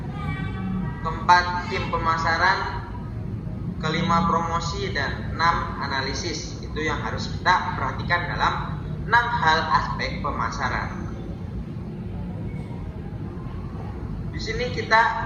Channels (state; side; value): identical; both; correlation 1.00